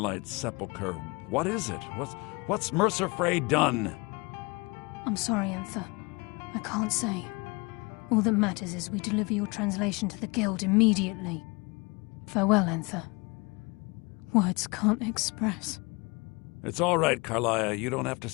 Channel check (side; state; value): right; quieter; 27.2 dB